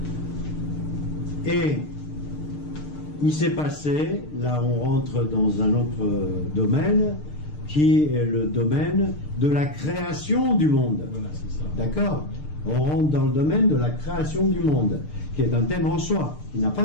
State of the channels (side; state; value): right; late; 6.7 ms